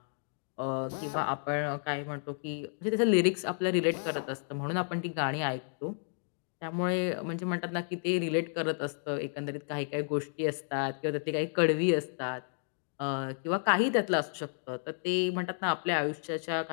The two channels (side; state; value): right; silent; digital silence